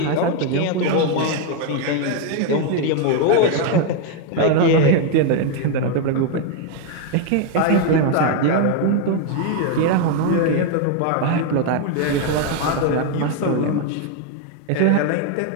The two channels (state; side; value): different; both; correlation 0.01